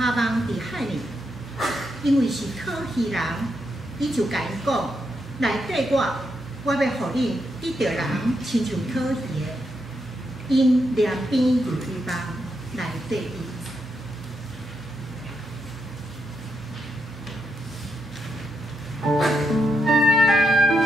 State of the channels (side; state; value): both; normal; correlation 0.82